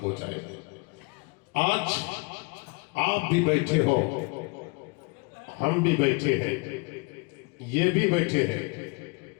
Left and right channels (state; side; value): quieter; right; 30.0 dB